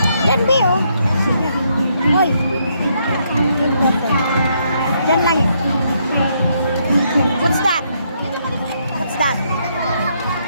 Yan, be, oh. Hoy. Yan lang, eh. What's that? What's that?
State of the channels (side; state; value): both; inverted; correlation -0.74